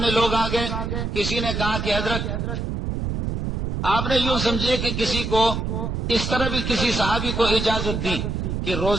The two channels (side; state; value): right; noise; rumble, 2 dB below the sound